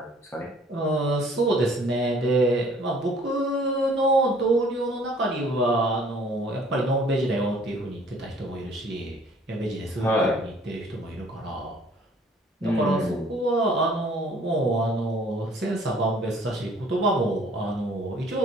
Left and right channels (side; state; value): both; normal; correlation 0.56